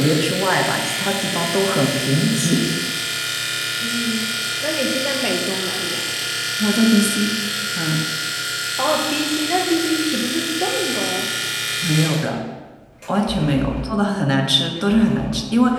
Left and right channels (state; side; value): identical; both; correlation 1.00